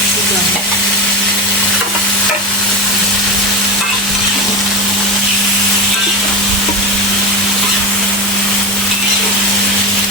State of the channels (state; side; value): normal; both; correlation 0.20